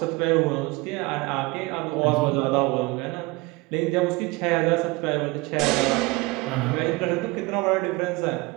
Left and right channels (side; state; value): left; quieter; 23.8 dB